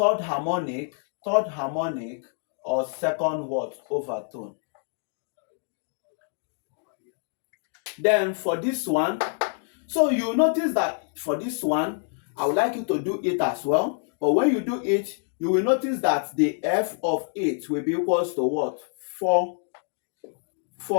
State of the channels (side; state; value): right; silent; 61 dB below the other